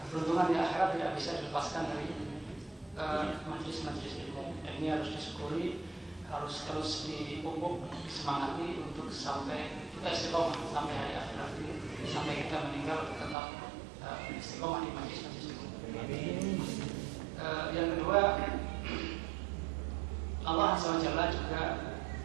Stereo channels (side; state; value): left; drops out; at 13.4 s